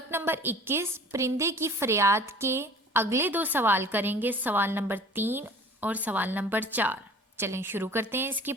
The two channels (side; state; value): both; normal; correlation 0.46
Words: नंबर 21 परिंदे की फरियाद के अगले दो सवाल करेंगे, सवाल नंबर 3 और सवाल नंबर 4। चलें शुरू करते हैं, इसकी